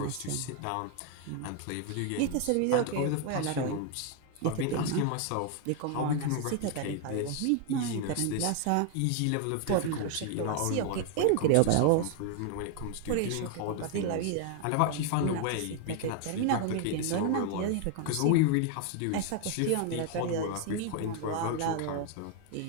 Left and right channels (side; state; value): both; different; correlation 0.00